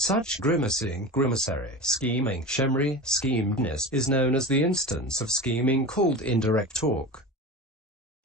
grimacing, grimacary, scheming, shemri, schemedness is known as the instance of scheming called indirect talk.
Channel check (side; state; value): both; normal; correlation 0.29